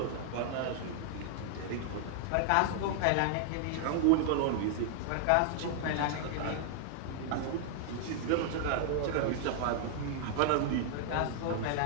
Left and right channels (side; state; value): both; different; correlation -0.01